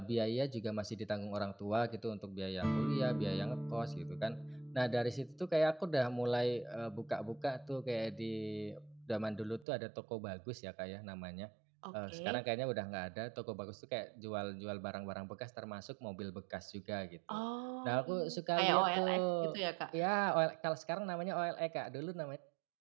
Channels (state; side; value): drops out; left; at 9.7 s